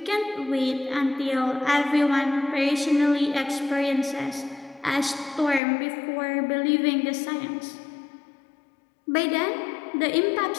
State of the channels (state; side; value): drops out; right; at 5.6 s